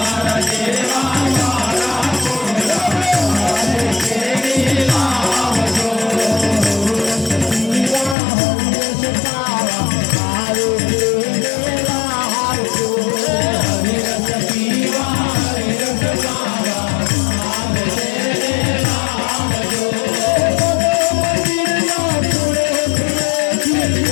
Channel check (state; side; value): drops out; right; at 8.2 s